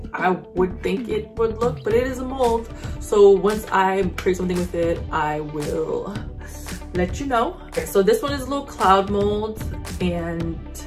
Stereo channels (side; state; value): both; identical; correlation 1.00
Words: I would think it would look, but it is a mold. So once I create something with it, I will let you know. Okay, so this one is a little cloud mold, and